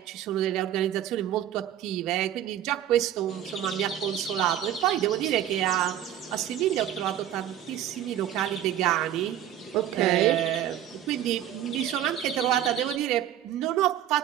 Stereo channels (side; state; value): left; quieter; 11.2 dB